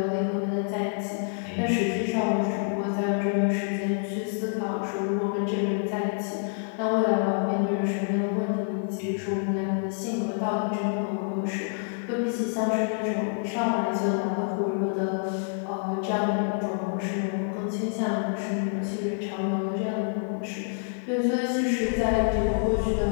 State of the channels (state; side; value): silent; right; 60 dB below the other